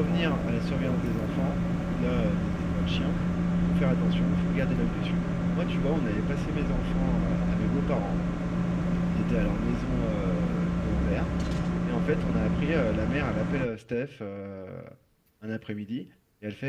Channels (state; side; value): identical; both; correlation 1.00